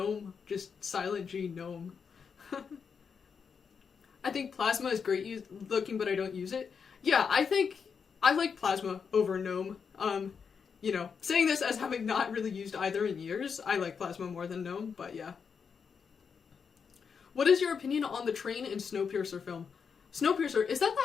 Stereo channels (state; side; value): quieter; right; 6.2 dB